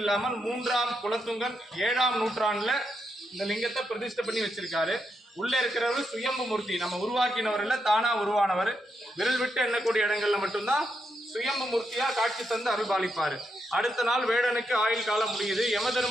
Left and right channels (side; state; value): both; normal; correlation 0.82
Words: இல்லாமல் 3ஆம் குலத்துங்கன் 7ஆம் நூற்றாண்டுல இந்த லிங்கத்தை பிரதிஷ்டை பண்ணி வச்சிருக்காரு. உள்ள இருக்கிறவர் சுயம்பு மூர்த்தி, நம்ம உருவாக்கினவர் இல்ல, தானா உருவானவர். விரல் விட்டு எண்ணக்கூடிய இடங்கள்ல மட்டும்தான் சுயம்பு மூர்த்தியா காட்சி தந்து அருள்பாலிப்பாரு. அடுத்த நாள் வேடனுக்கு ஆயுள் காலம் முடியுது. யம